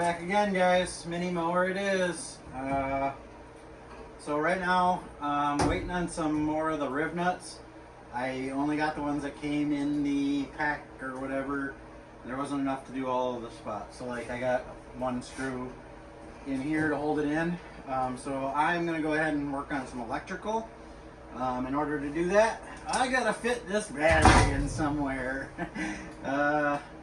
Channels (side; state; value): both; identical; correlation 1.00